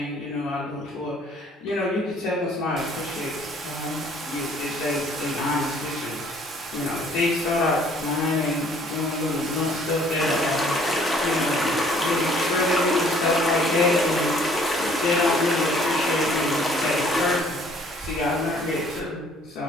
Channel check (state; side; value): normal; both; correlation 0.59